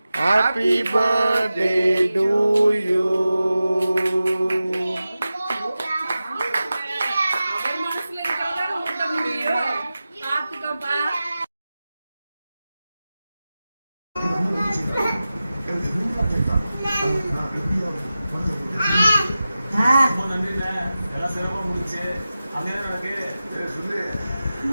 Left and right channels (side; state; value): both; inverted; correlation -0.94